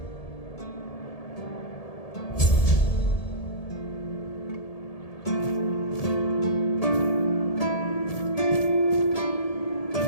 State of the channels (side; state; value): right; late; 1.8 ms